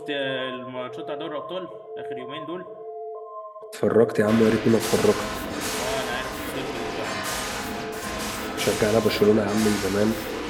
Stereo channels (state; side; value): identical; both; correlation 1.00